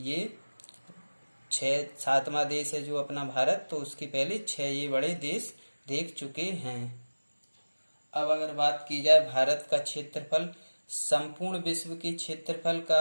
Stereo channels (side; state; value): both; inverted; correlation -1.00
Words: 7वां देश है जो अपना भारत, तो उसके पहले 6 ये बड़े देश देख चुके हैं। अब अगर बात की जाए भारत का क्षेत्रफल संपूर्ण विश्व के क्षेत्रफल